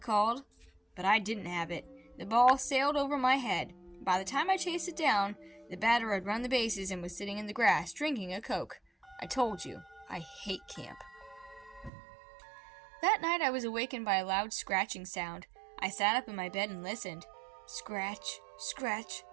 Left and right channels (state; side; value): drops out; left; at 11.9 s